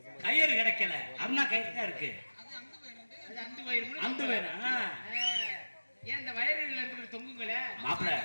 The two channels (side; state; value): both; inverted; correlation -1.00